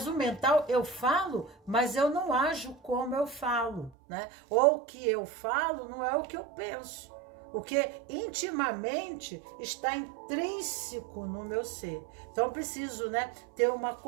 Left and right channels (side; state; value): left; drops out; at 3.9 s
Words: o mental, eu falo, mas eu não ajo como eu falo, né? Ou o que eu falo não é o que eu penso. O que intimamente está intrínseco no meu ser. Então, eu preciso, né, ter uma